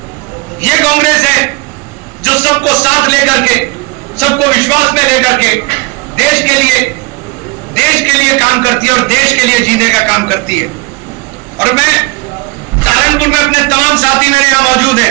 यह कांग्रेस है जो सबको साथ लेकर के, सबको विश्वास में लेकर के देश के लिए काम करती है और देश के लिए जीने का काम करती है। और मैं सहारनपुर में अपने तमाम साथी मेरे यहां मौजूद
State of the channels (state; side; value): quieter; left; 25.3 dB